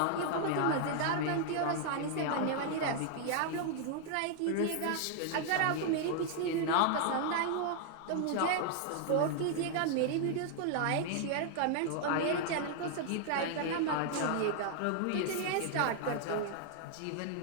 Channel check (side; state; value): both; different; correlation 0.00